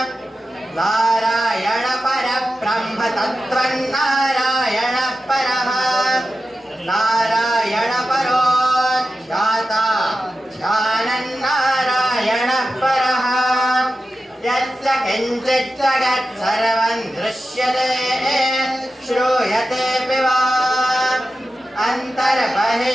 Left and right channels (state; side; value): normal; both; correlation 0.92